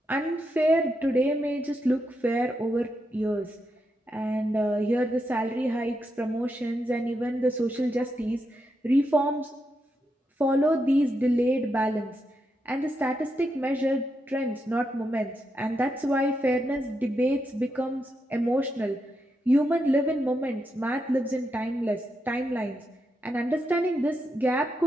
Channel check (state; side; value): normal; both; correlation 0.84